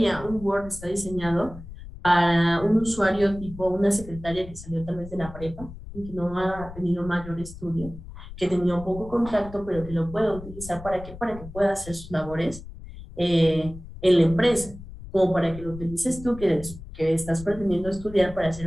un Word está diseñado para un usuario tipo una secretaria que salió tal vez de la prepa y que no ha tenido mayor estudio, que tenía un poco contacto, pero que lo pueda utilizar ¿para qué? Para que pueda hacer sus labores en la empresa, como para que lo utilices tú, que estás pretendiendo estudiar para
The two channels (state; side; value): noise; left; rumble, 14 dB below the sound